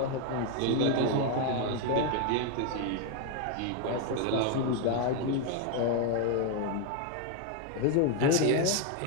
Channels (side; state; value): both; different; correlation 0.01